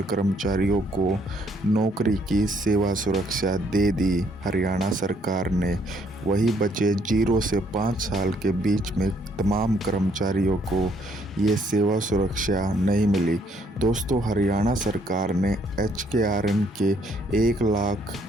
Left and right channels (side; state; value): both; normal; correlation 0.67